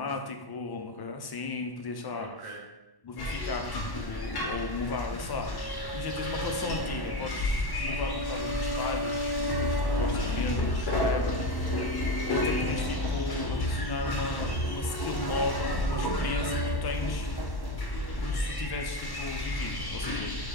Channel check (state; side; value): late; right; 1.1 ms